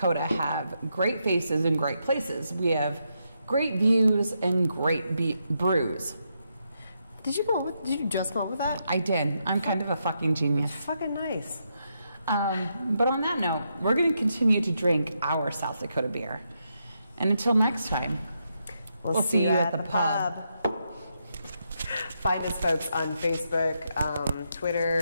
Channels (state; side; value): inverted; both; correlation -0.81